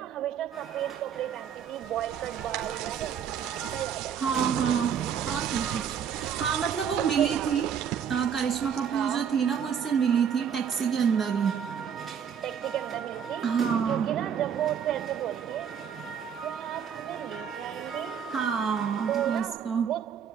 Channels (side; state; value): left; quieter; 7.8 dB